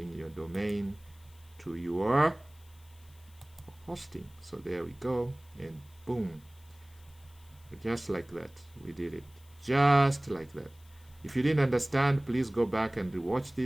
your domain to your hosting. So there we go, and boom, just like that, we did it, just like that. If you didn't understand, please go back and rewatch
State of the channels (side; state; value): left; noise; hiss, 28 dB below the sound